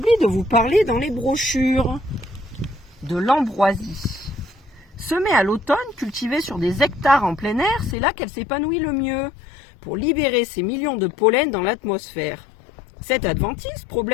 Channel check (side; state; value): right; drops out; at 8.0 s